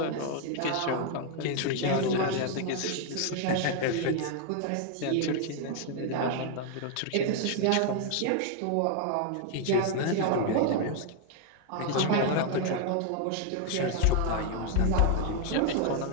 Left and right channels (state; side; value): different; both; correlation 0.00